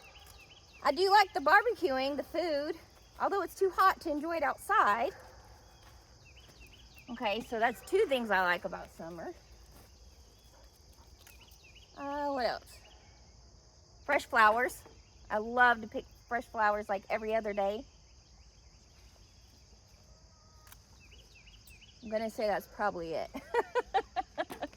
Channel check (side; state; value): both; identical; correlation 1.00